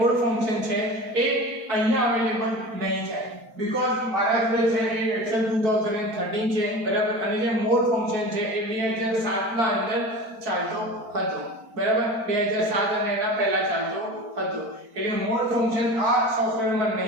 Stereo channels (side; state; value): left; late; 4.5 ms